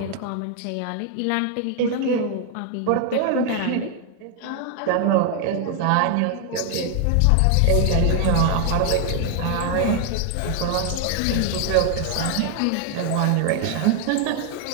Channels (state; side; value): different; both; correlation 0.00